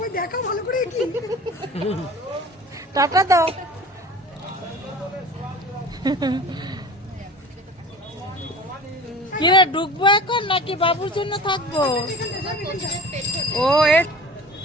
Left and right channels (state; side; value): normal; both; correlation 0.40